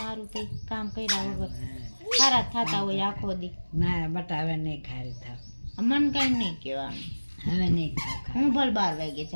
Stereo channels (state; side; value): inverted; both; correlation -1.00